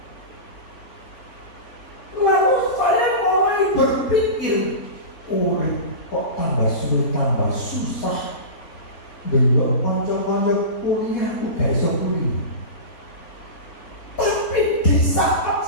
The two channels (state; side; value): late; right; 3.9 ms